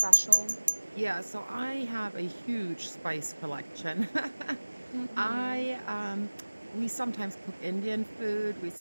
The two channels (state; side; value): inverted; both; correlation -1.00